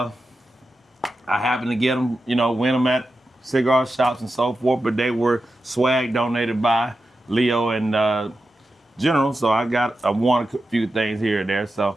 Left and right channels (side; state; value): both; normal; correlation 0.90